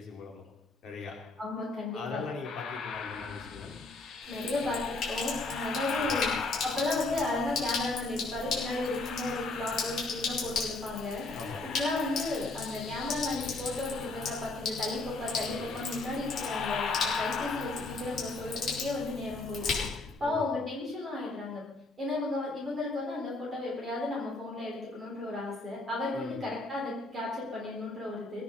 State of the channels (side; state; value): right; quieter; 3.0 dB